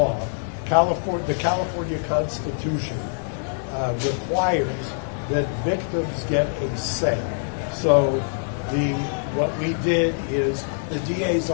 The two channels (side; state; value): right; silent; digital silence